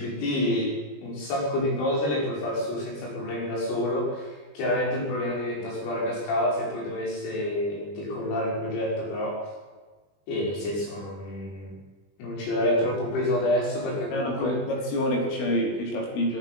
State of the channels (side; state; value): right; late; 20 ms